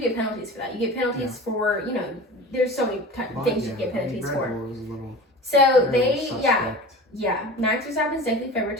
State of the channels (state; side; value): normal; both; correlation 0.35